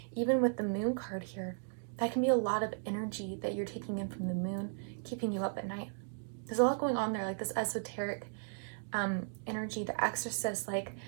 Even with the moon card here, that can be a lot of energy that you're taking in from the moon, keeping you up at night. There's a lot going on there, like this esoteric energy, the Exorcist, like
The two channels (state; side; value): silent; left; digital silence